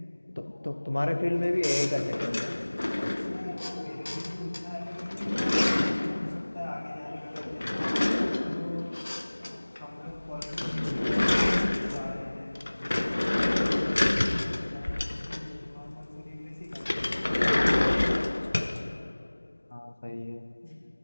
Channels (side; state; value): both; inverted; correlation -1.00